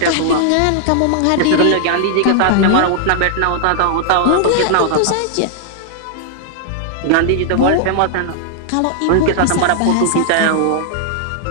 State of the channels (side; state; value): both; different; correlation 0.00